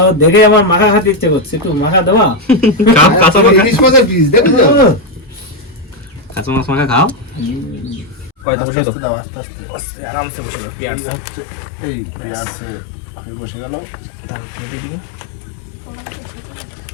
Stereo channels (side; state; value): right; drops out; at 8.5 s